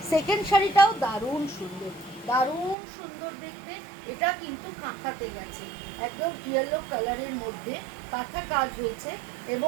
সেকেন্ড শাড়িটাও দারুণ সুন্দর, দারুণ সুন্দর দেখতে। এটা কিন্তু কাঁথাতে গেছে, একদম ইয়েলো কালারের মধ্যে কাঁথা কাজ হয়েছে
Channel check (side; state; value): left; drops out; at 2.8 s